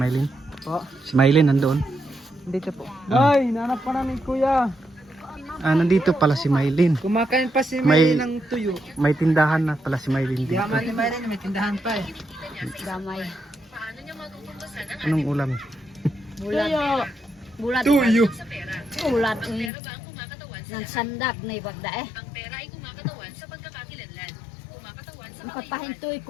Mylene? Po, Si Mylene nandun. dito po. Ay, nanap pa namin kuya. Nandito pala si Mylene. Kumakain pa si May- Mylene ng tuyo. May tindahan na pala si Mylene Di dito. naman ni Mylene, may tindahan pa eh. Damay. Anong ulam? Bulat. Bulat. Tuyo. Bulat. Nang sandak na ibagda eh. Ang kapahintoy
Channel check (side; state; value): right; drops out; at 19.7 s